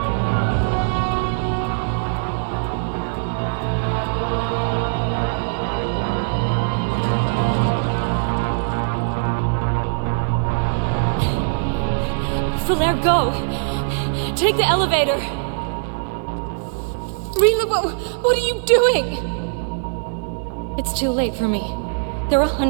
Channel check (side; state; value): left; silent; digital silence